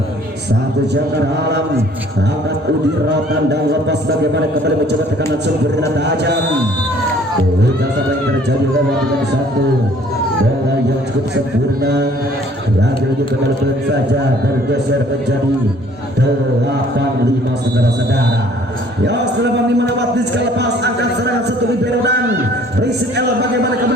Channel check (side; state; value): both; normal; correlation 0.57